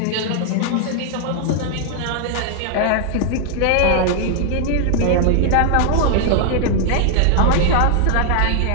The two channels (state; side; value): different; both; correlation 0.00